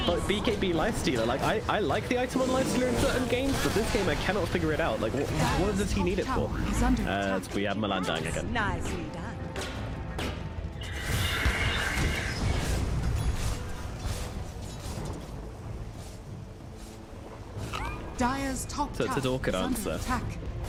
Lifestealer. Like, I like the item on Lifestealer in certain games, but this game I cannot figure it out. Like, what does he need it for? We have Milan dying again. Nicely done. Dire's top So it's a tower awkward is under answer. attack.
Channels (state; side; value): identical; both; correlation 1.00